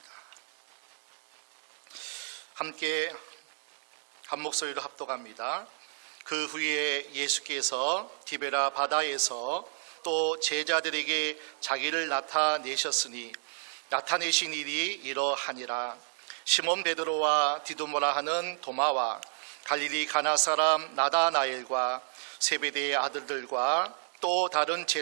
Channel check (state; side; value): silent; left; digital silence